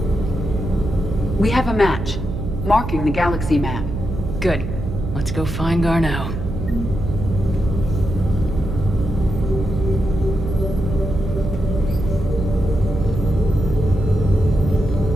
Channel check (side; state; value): right; noise; hum, 6 dB below the sound